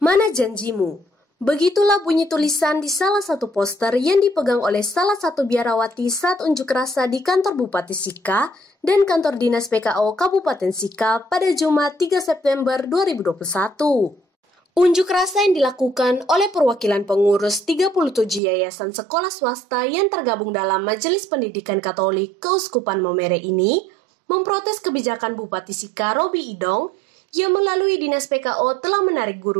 janjimu? Begitulah bunyi tulisan di salah satu poster yang dipegang oleh salah satu biarawati saat unjuk rasa di kantor Bupati Sika dan kantor Dinas PKO Kabupaten Sika pada Jumat 3 September 2021. Unjuk rasa yang dilakukan oleh perwakilan pengurus 37 yayasan sekolah swasta yang tergabung dalam Majelis Pendidikan Katolik Keuskupan Momere ini memprotes kebijakan Bupati Sika Robi Idong yang melalui Dinas PKO telah menarik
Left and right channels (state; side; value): drops out; left; at 18.4 s